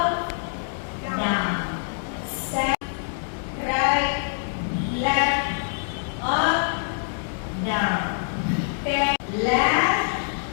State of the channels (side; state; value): right; silent; digital silence